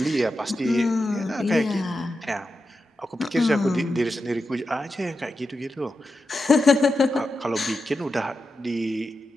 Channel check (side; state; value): both; normal; correlation 0.89